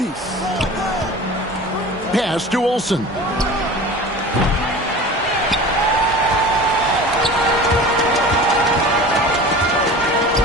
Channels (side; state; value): both; normal; correlation 0.37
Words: Pass to Olsen.